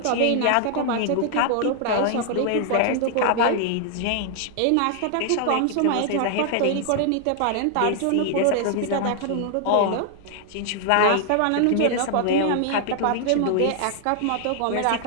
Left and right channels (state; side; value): different; both; correlation 0.00